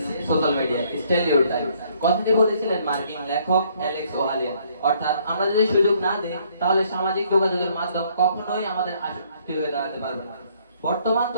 social media. Still your time. কথাটি বলেছিলেন মার্কিন লেখক অ্যালেক্স ওহালিয়ান। অর্থাৎ আমরা যদি সুযোগ না দিই তাহলে সামাজিক যোগাযোগের মাধ্যম কখনোই আমাদের আসক্তি হয়ে দাঁড়াতে পারবে না। বর্তমান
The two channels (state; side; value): inverted; both; correlation -0.65